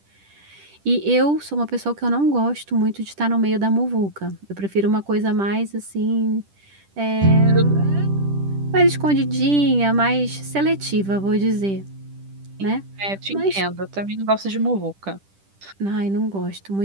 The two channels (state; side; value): late; left; 10 ms